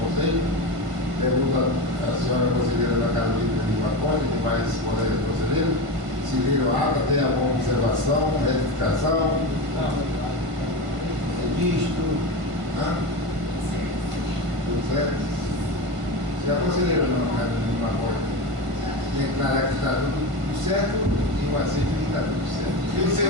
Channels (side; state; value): left; late; 1.5 ms